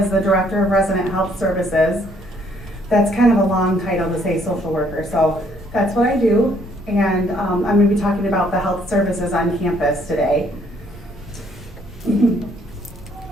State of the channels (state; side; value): normal; both; correlation 0.66